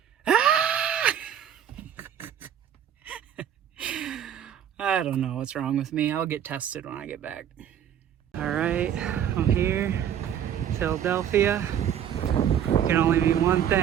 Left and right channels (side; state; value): left; quieter; 9.6 dB